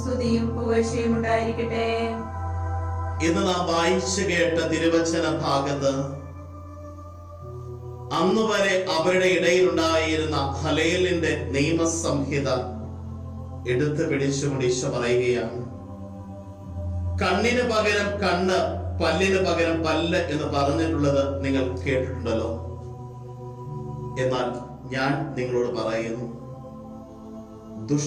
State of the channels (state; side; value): identical; both; correlation 1.00